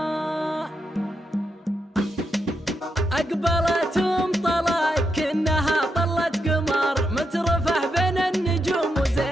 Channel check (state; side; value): normal; both; correlation 0.83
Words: أقبلت طلق كأنها طلت قمر مترفه بين النجوم